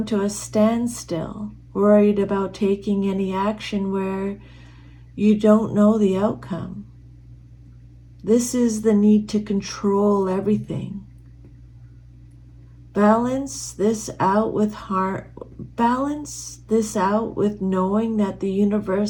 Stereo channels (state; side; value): identical; both; correlation 1.00